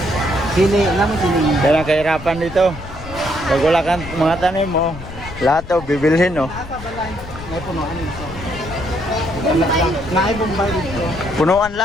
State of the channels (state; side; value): noise; left; rumble, 13 dB below the sound